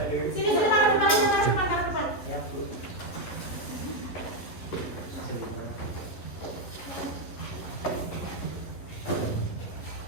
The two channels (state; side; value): late; right; 11 ms